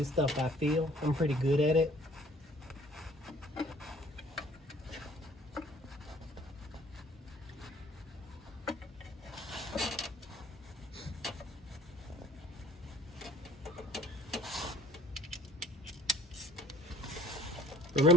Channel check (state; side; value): normal; both; correlation 0.55